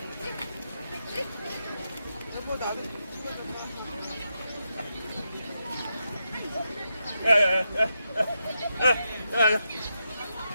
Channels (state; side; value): inverted; both; correlation -0.85